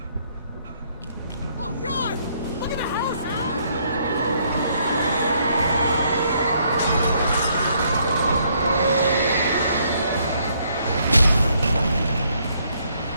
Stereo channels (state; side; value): inverted; both; correlation -0.70